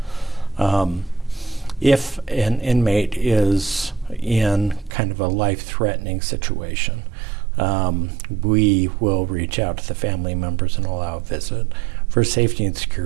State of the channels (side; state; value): left; drops out; at 5.0 s